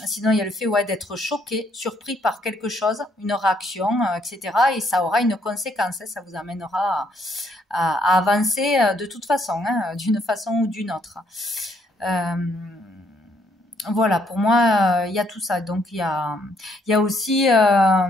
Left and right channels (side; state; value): both; normal; correlation 0.70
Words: Sinon, il y a le fait d'être choqué, surpris par quelque chose, une réaction, etc. Et ça aura une conséquence, ça vous amènera à avancer de toute façon, d'une façon ou d'une autre. Voilà, pour moi, il y a tout ça. Donc, il y a aussi,